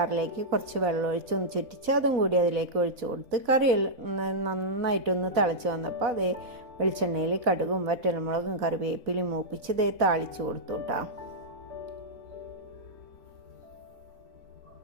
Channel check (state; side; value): late; left; 4.1 ms